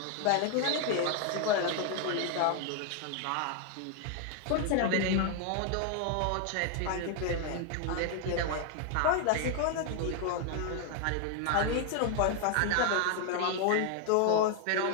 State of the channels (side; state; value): both; different; correlation 0.00